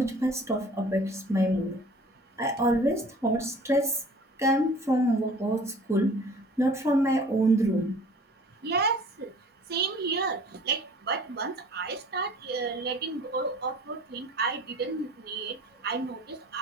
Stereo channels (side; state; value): both; normal; correlation 0.48